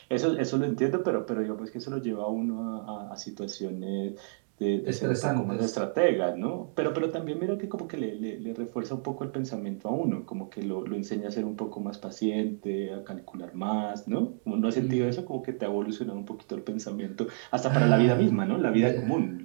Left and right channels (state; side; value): silent; left; digital silence